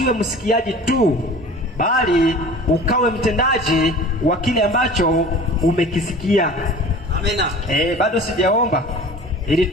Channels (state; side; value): normal; both; correlation 0.42